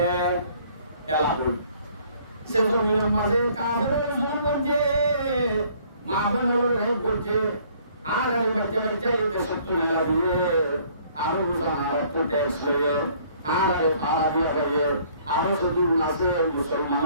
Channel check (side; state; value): both; inverted; correlation -0.59